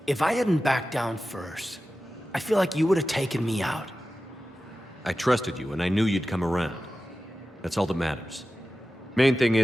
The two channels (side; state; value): both; normal; correlation 0.94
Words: If I hadn't backed down first, I feel like you would have taken me out. I trusted you, and I knew you'd come around. That's all that matters. Main thing